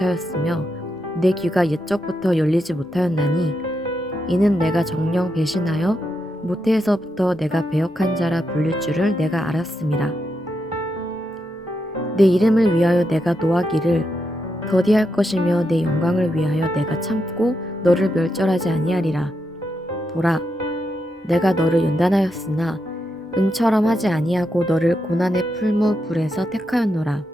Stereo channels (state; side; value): normal; both; correlation 0.84